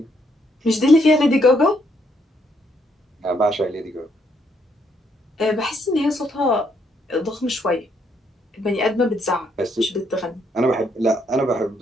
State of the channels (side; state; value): both; normal; correlation 0.72